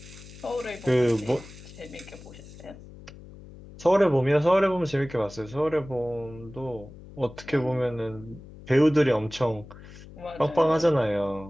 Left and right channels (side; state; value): left; noise; hum, 17 dB below the sound